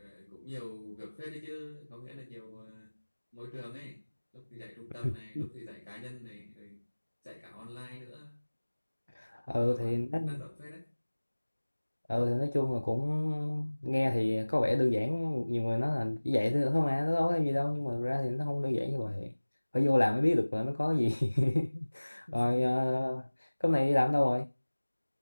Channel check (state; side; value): inverted; both; correlation -1.00